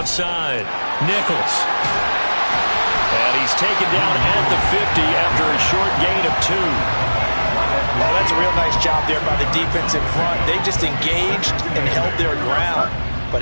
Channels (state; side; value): inverted; both; correlation -1.00